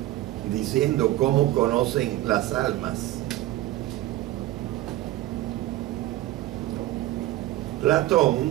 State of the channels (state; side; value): quieter; left; 15.7 dB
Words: diciendo cómo conocen las almas.